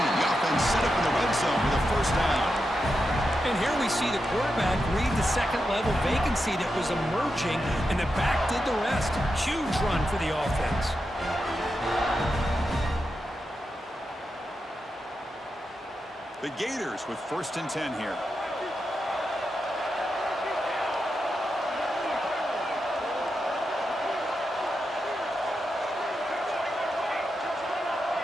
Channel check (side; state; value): both; normal; correlation 0.88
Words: The offense set up in the red zone with a first down. And here we see the quarterback read the second-level vacancy that was emerging, and the back did the rest. Huge run for the offense. The Gators with 1st and 10 here.